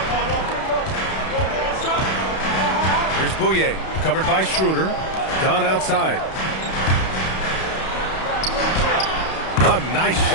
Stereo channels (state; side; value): late; right; 31 ms